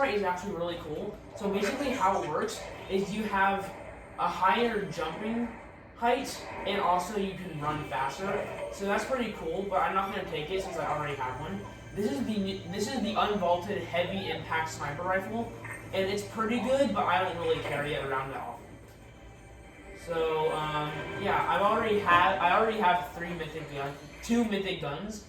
is actually really cool. So basically how it works is you have a higher jumping height, and also you can run faster. So that's pretty cool, but I'm not going to take it since I already have one. This is the unvaulted heavy impact sniper rifle, and it's pretty good, but I don't really carry it around that often. So yeah, I already have two mythic guns,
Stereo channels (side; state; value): both; identical; correlation 1.00